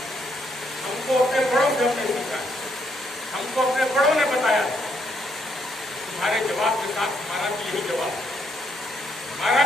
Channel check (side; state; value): both; normal; correlation 0.73